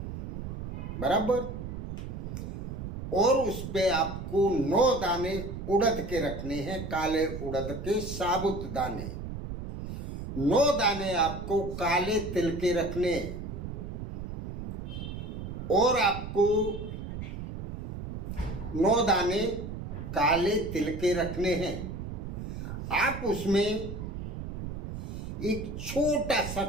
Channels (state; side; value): noise; right; rumble, 7 dB below the sound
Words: बराबर। और उस पे आपको 9 दाने उड़द के रखने हैं, काले उड़द के साबुत दाने। 9 दाने आपको काले तिल के रखने हैं, और आपको 9 दाने काले तिल के रखने हैं। आप उसमें एक छोटा सा